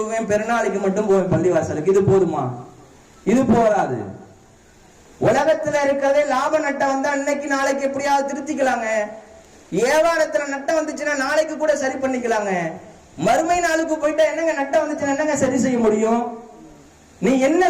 பெருநாளைக்கு மட்டும் போவேன் பள்ளிவாசலுக்கு, இது போதுமா? இது போதாது. உலகத்துல இருக்கிறதே லாப நட்டம் வந்தா இன்னைக்கு நாளைக்கு எப்படியாவது திருத்திக்கலாங்க. வியாபாரத்துல நட்டம் வந்துச்சுன்னா நாளைக்கு கூட சரி பண்ணிக்கலாங்க. மறுமை நாளுக்கு போயிட்டா என்னங்க நட்டம் வந்துச்சுன்னா என்னங்க சரி செய்ய முடியும்? நீ என்ன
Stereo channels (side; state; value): both; identical; correlation 1.00